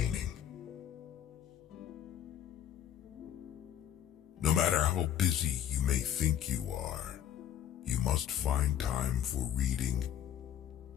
No matter how busy you may think you are, you must find time for reading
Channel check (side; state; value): right; quieter; 10.0 dB